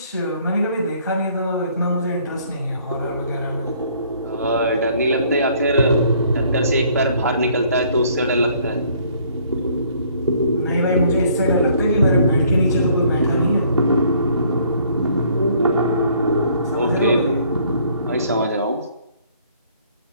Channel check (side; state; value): both; inverted; correlation -0.61